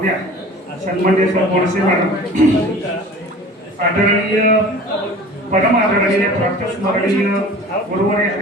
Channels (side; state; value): both; normal; correlation 0.42